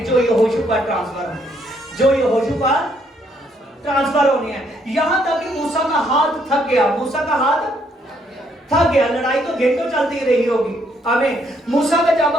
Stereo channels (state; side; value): normal; both; correlation 0.71